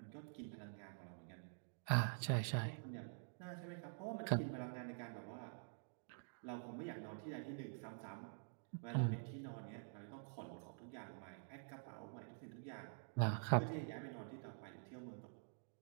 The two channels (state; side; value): silent; left; digital silence